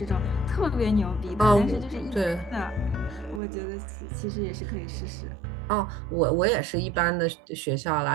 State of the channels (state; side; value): drops out; left; at 3.4 s